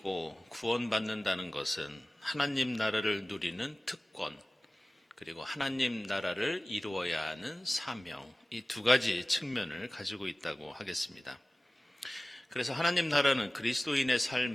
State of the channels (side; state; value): both; normal; correlation 0.98